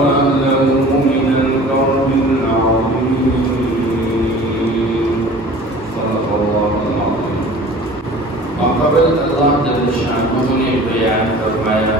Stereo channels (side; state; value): both; normal; correlation 0.44